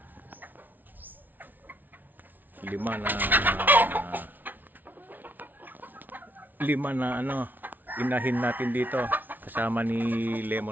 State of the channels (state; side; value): late; left; 0.085 ms